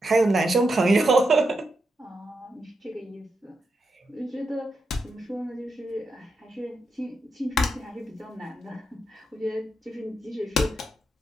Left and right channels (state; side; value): normal; both; correlation 0.85